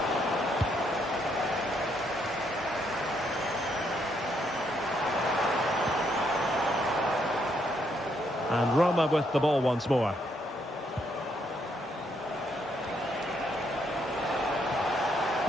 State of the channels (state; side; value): normal; both; correlation 0.74